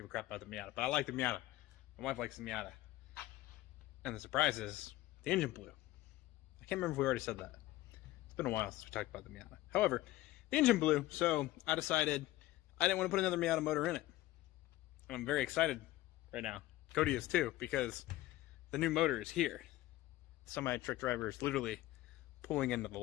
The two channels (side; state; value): right; quieter; 16.8 dB